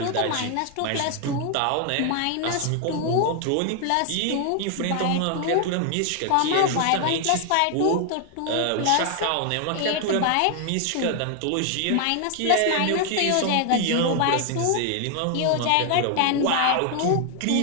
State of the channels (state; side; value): different; both; correlation 0.00